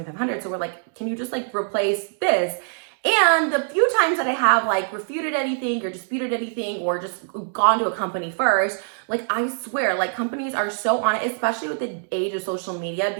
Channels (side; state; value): left; silent; 63 dB below the other